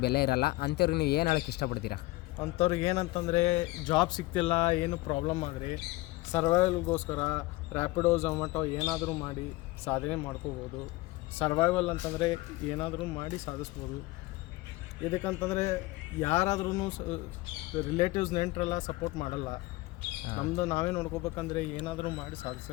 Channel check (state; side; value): quieter; right; 20.6 dB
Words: ಬೆಲೆ ಇರಲ್ಲ. ಅಂಥವ್ರಿಗೆ ನೀವು ಏನು ಹೇಳೋಕ್ಕೆ ಇಷ್ಟಪಡ್ತೀರಾ? ಅಂಥವ್ರಿಗೆ ಏನಂತಂದರೆ ಜಾಬ್ ಸಿಗ್ತಿಲ್ಲ, ಏನು ಪ್ರಾಬ್ಲಮ್ ಆದರೆ ಸರ್ವೈವಲ್ಗೋಸ್ಕರ ರ್ಯಾಪಿಡೋ ಝೊಮ್ಯಾಟೊ ಏನಾದರೂ ಮಾಡಿ ಸಾಧನೆ ಮಾಡ್ಕೋಬೋದು. ಸರ್ವೈವಲ್ ಅಂತಂದರೆ ಏನಾದರೂ ಮಾಡಿ ಸಾಧಿಸ್ಬೋದು. ಇದಕ್ಕಂತಂದರೆ ಯಾರಾದ್ರೂ ರಿಲೇಟಿವ್ಸ್ ನೆಂಟರೆಲ್ಲ ಸಪೋರ್ಟ್ ಮಾಡಲ್ಲ. ನಮ್ಮದು ನಾವೇ ನೋಡ್ಕೋಬೇಕಂದ್ರೆ ಏನಾದರೂ ಮಾಡಿ ಸಾಧಿಸ.